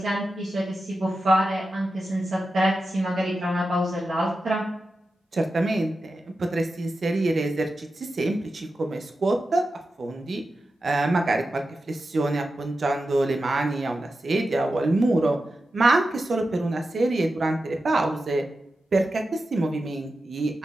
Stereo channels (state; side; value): normal; both; correlation 0.91